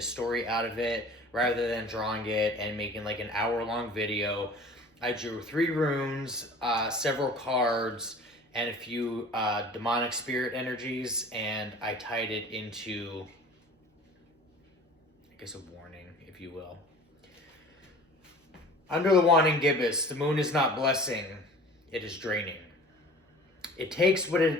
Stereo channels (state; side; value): normal; both; correlation 0.44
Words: story out of it rather than drawing it and making like an hour-long video. I drew 3 runes, several cards, and a few demonic spirit energies, and I tied it into, I guess, a warning, if you will. Under the Waning Gibbous, the moon is not blessing, it is draining. It takes what